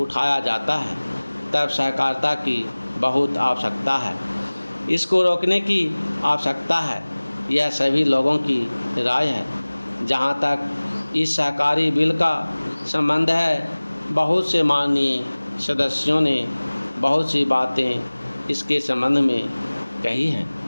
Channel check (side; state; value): both; inverted; correlation -1.00